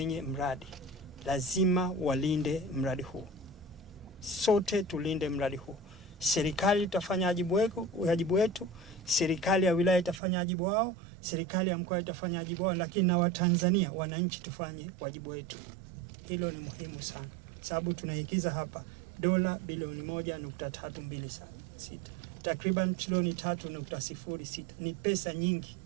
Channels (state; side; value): drops out; left; at 10.2 s